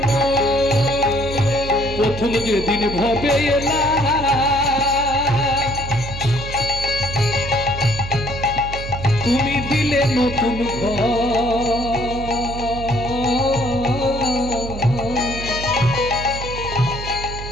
না। প্রথম যেদিন ভবে এলা তুমি দিলে নতুন ঘর,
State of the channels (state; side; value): noise; right; hum, 8 dB below the sound